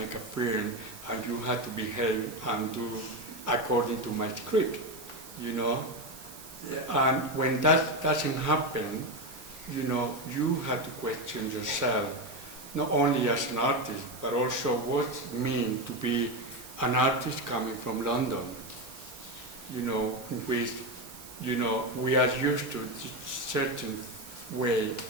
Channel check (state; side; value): noise; right; hiss, 16 dB below the sound